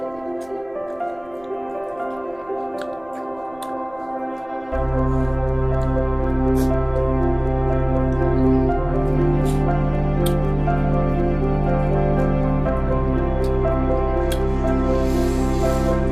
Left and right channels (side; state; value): right; noise; rumble, 27 dB below the sound